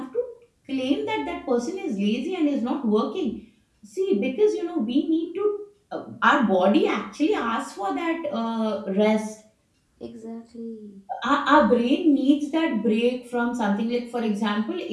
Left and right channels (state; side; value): identical; both; correlation 1.00